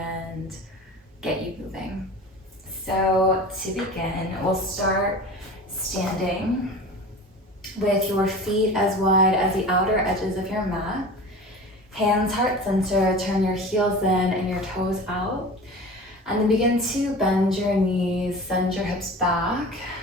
get you moving. So to begin, we'll start standing with your feet as wide as the outer edges of your mat. Hands heart center, turn your heels in and your toes out. And then begin to bend your knees, send your hips back.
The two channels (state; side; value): normal; both; correlation 0.36